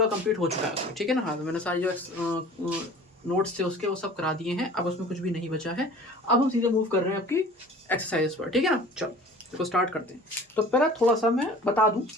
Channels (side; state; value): both; normal; correlation 0.44